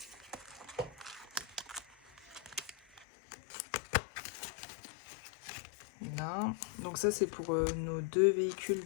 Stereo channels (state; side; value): drops out; right; at 3.1 s